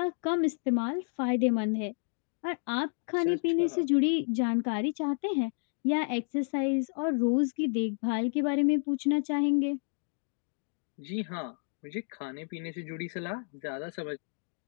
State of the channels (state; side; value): silent; right; 57 dB below the other